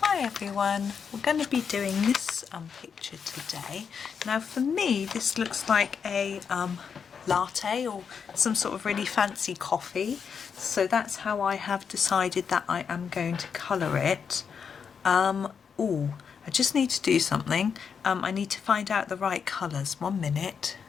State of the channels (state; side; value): quieter; right; 6.6 dB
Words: Hi everyone, we're going to be doing this picture today. Now for me this looks like a latte or some sort of really fancy coffee, so that's how I have decided that I am going to colour it. Oh, I just need to do something. I need to find out the right colours. 1 minute.